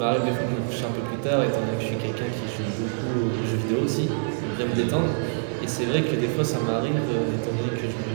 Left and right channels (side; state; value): left; silent; digital silence